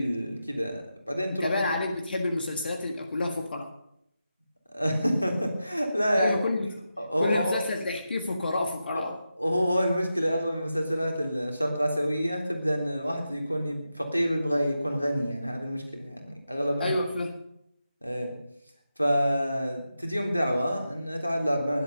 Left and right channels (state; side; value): inverted; both; correlation -0.89